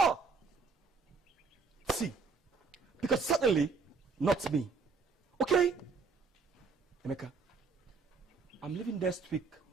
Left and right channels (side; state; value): left; quieter; 4.6 dB